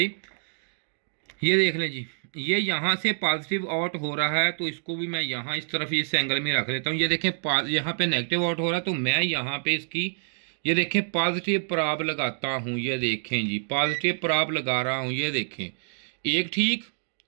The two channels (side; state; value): left; silent; digital silence